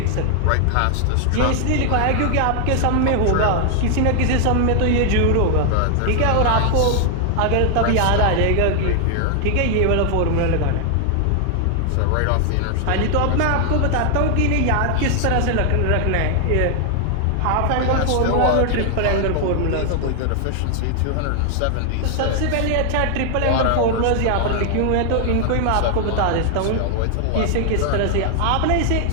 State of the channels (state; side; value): different; both; correlation 0.00